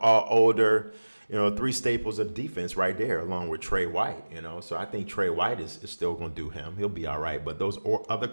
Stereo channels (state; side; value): inverted; both; correlation -1.00